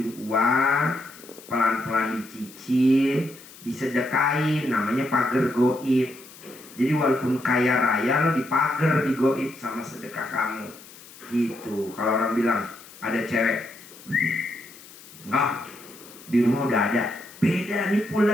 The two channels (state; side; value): noise; left; hiss, 20 dB below the sound